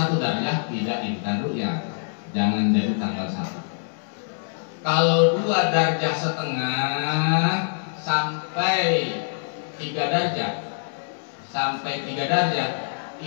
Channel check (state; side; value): silent; right; digital silence